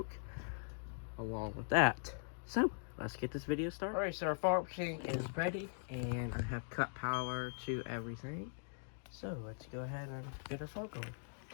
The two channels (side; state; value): right; silent; digital silence